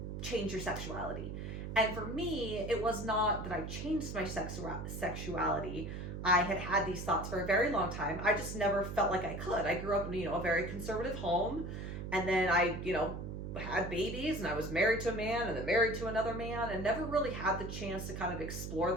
change your sexuality. And for me, it was not that I changed my sexuality. I had these thoughts for a very long time. I just never felt like I could. I grew up in, a very conservative home. And then I, had babies, and I was married to a man and then married to another man, and never really had the chance to kind of explore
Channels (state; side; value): noise; right; hum, 6 dB below the sound